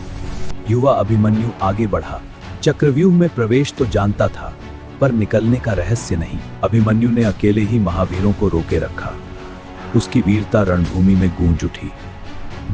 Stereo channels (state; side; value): identical; both; correlation 1.00